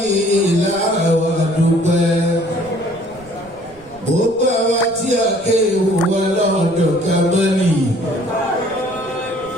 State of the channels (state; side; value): noise; right; rumble, 24 dB below the sound